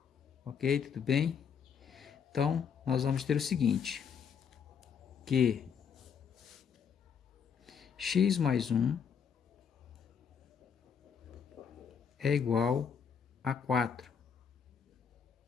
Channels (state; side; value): quieter; right; 7.0 dB